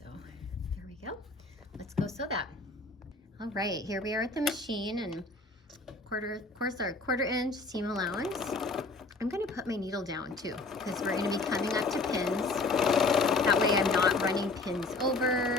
there we go. Let's go sew that. All right, here we are at the machine, and of course our 1/4 inch seam allowance. I'm gonna put my needle down too, because we're gonna be coming up to pins. That way I'm not running pins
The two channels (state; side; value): quieter; right; 3.4 dB